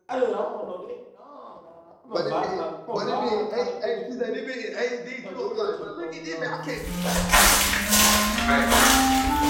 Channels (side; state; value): both; identical; correlation 1.00